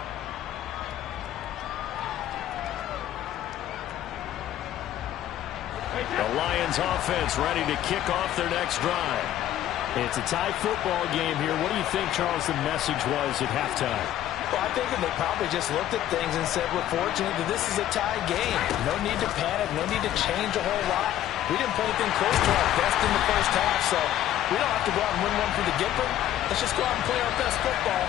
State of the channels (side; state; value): right; quieter; 12.3 dB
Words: The Lions offense ready to kick off their next drive. It's a tie football game here. What do you think, Charles, the message was at halftime? Well, I think that they probably just looked at things and said, we're fortunate that this is a tie game. No need to panic. No need to change a whole lot. We didn't play anything close to our best in the first half, so we don't have to go out and win one for the Gipper. Let's just go out and play our best football